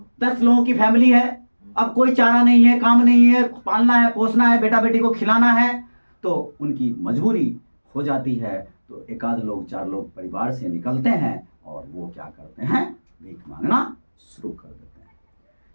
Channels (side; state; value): both; inverted; correlation -1.00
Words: 10 लोगों की फैमिली है, अब कोई चारा नहीं है, काम नहीं है, पालना है, पोसना है, बेटा बेटी को खिलाना है, तो उनकी मजबूरी हो जाती है। तो एक आध लोग 4 लोग परिवार से निकलते हैं और वो क्या करते हैं, भीख मांगना शुरू कर देते हैं।